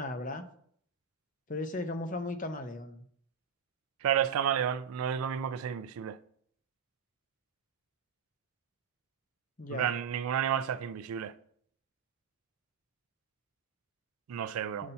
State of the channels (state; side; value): quieter; left; 6.4 dB